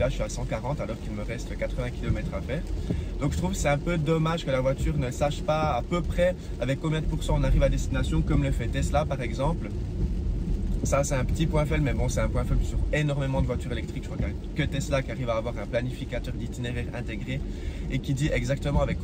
je suis à 140 alors qu'il me reste 80 km à faire. Donc je trouve que c'est un peu dommage que la voiture ne sache pas à peu près avec combien de pourcents on arrive à destination, comme le fait Tesla par exemple. Ça, c'est un petit point faible, mais bon, c'est un point faible sur énormément de voitures électriques. Je crois qu'il n'y a que Tesla qui arrive à avoir un planificateur d'itinéraire intégré et qui dit exactement avec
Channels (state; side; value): identical; both; correlation 1.00